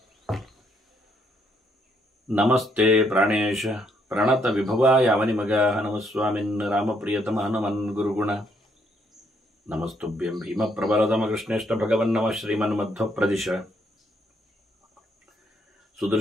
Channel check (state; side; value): normal; both; correlation 0.72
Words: नमस्ते प्राणेश प्रणतविभवाय अवनिमगाः नमस्वामिन् रामप्रियतम हनुमन् गुरुगुण नमस्तुभ्यं भीमप्रबलतमकृष्णेष्ट भगवन्नमः श्रीमन्मध्वप्रदिश